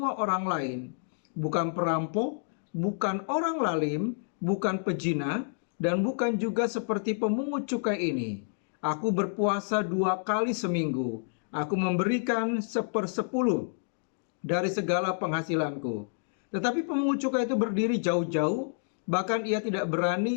orang lain. Bukan perampok, bukan orang lalim, bukan pezina, dan bukan juga seperti pemungut cukai ini. Aku berpuasa 2 kali seminggu. Aku memberikan 1/10 dari segala penghasilanku. Tetapi pemungut cukai itu berdiri jauh-jauh, bahkan ia tidak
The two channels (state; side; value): silent; right; digital silence